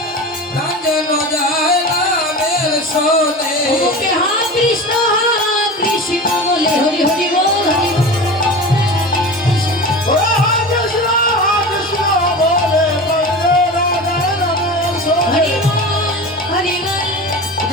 প্রাণ যেন যায় নামের শোনে। মুখে হা কৃষ্ণ বলে হরি হরি বল হরি বল। ওরে কৃষ্ণ বলে বন্দে রাধে রামের শোনে। হরি বল হরি বল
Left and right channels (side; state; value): both; normal; correlation 0.31